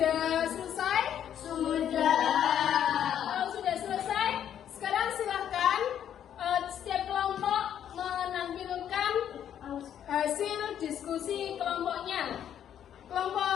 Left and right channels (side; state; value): right; quieter; 9.8 dB